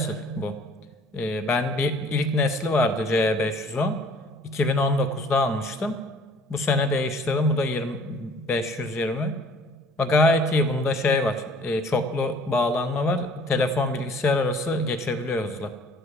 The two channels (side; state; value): both; normal; correlation 0.53